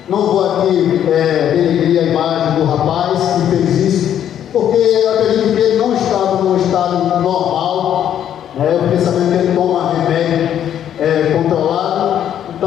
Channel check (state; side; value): quieter; right; 10.1 dB